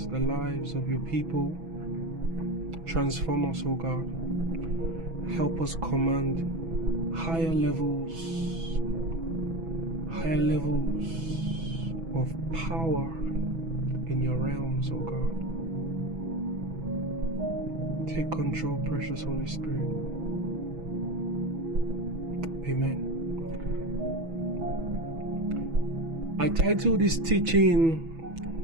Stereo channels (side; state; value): left; late; 6.1 ms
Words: the lives of your people. Transform us, O God. Help us command higher levels of power in your realms, O God. Take control, precious Holy Spirit. Amen. I titled this